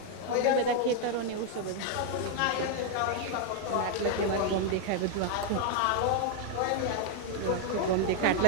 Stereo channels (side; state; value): both; different; correlation 0.00